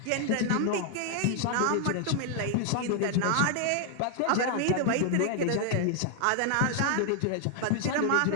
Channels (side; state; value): both; different; correlation 0.00